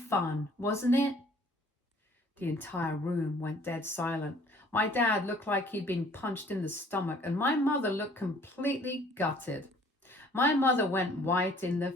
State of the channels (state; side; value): normal; both; correlation 0.56